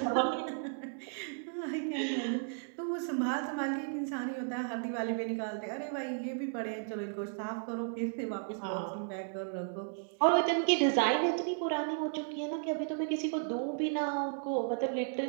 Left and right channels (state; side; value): silent; left; digital silence